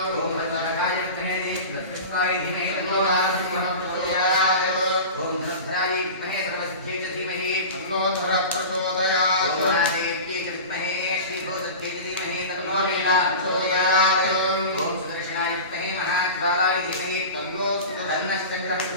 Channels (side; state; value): both; inverted; correlation -0.32